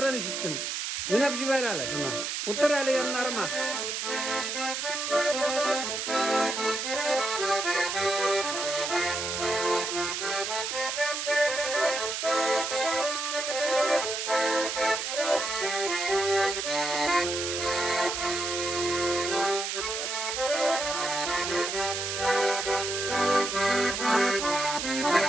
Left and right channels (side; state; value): right; noise; hiss, 3 dB below the sound